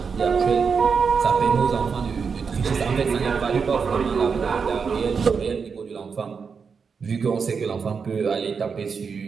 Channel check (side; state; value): left; quieter; 5.7 dB